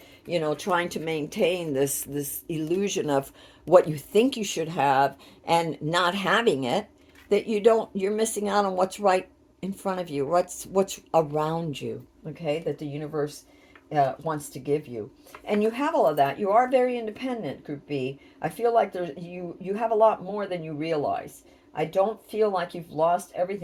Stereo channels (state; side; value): identical; both; correlation 1.00